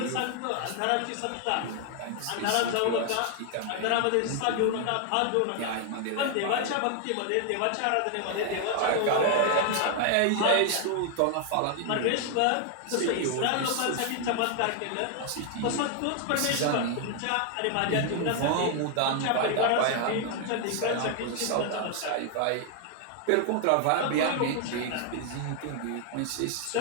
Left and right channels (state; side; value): different; both; correlation 0.00